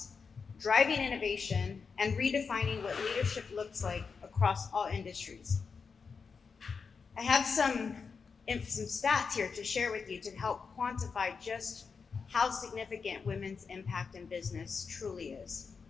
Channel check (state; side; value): quieter; right; 5.4 dB